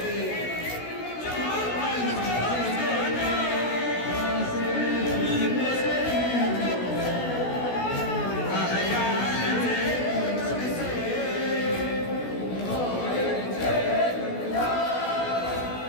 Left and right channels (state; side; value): late; right; 16 ms